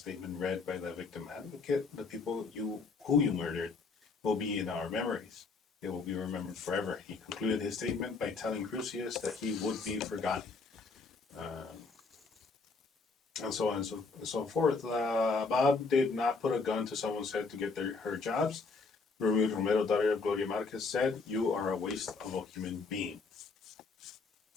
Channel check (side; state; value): right; quieter; 4.3 dB